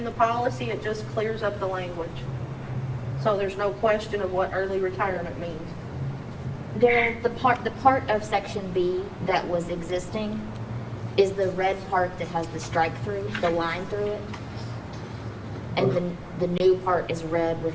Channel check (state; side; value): identical; both; correlation 1.00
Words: the policy, it just clears up the language. So there's no question of what early retirement means. Daryl, the part of section B that was existing is the red part that has the strike through, the line through it. And the new part is red with